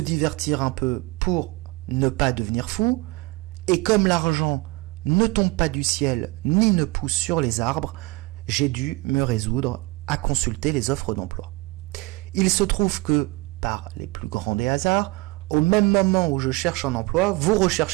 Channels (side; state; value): left; quieter; 22.9 dB